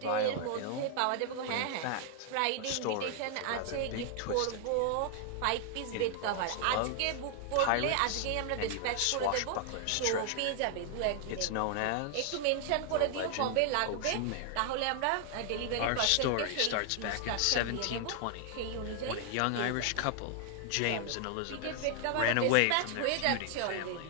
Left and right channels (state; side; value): different; both; correlation 0.00